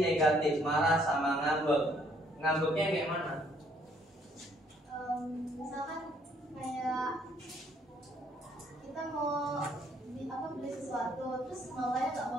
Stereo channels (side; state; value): both; normal; correlation 0.66